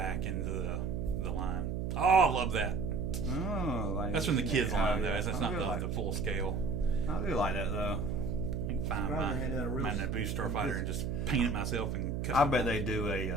into the line. Oh, I love that. Oh, that's from the kids' line, though. That's not the full scale. I do like that, though. I can find my Naboo Starfighter and just paint it myself and cut I bet they do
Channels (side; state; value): right; noise; hum, 2 dB below the sound